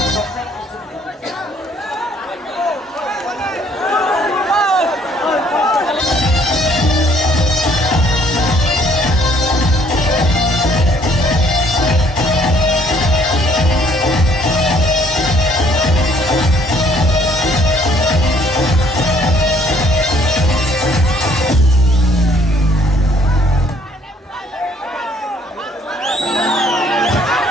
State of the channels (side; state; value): both; normal; correlation 0.62